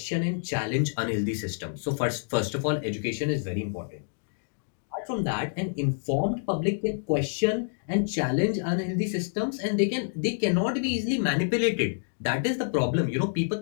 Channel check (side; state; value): right; silent; digital silence